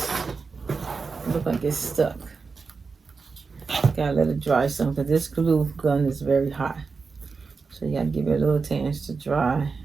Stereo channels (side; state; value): left; quieter; 4.7 dB